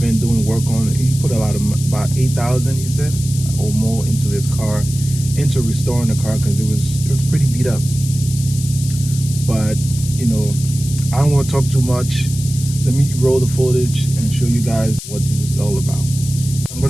doing work on it. He put a lot of, about 8,000, he said, or more into this car, into restoring the car, because it was pretty beat up. But you know, I don't want to talk too much. Let me roll the footage and show you guys what this is all about. I'm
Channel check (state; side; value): noise; left; hiss, 11 dB below the sound